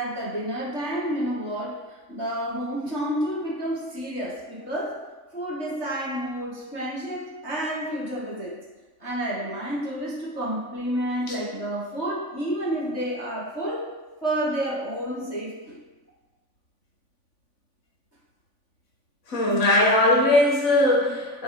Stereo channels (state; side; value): late; right; 3.5 ms